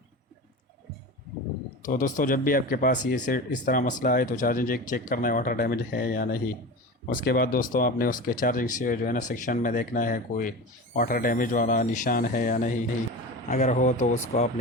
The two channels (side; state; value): both; normal; correlation 0.29